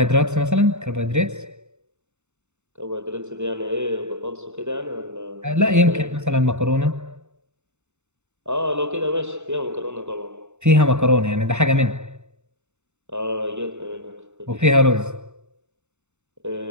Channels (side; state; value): left; late; 0.83 ms